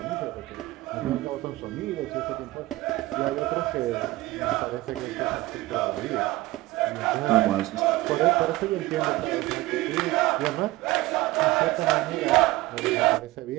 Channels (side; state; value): left; quieter; 18.8 dB